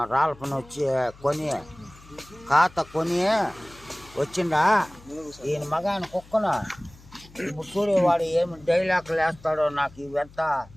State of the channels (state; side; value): noise; left; hum, 23 dB below the sound